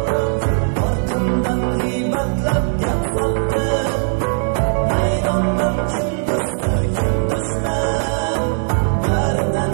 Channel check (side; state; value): left; silent; digital silence